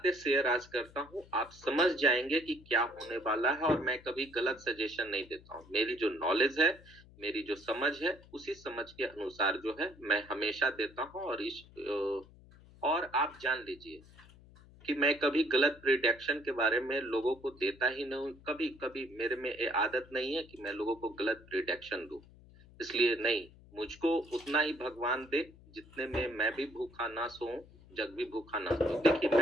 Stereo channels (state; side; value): noise; left; hum, 23 dB below the sound